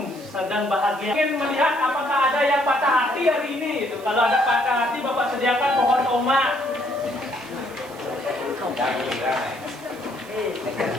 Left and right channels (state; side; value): noise; right; hiss, 22 dB below the sound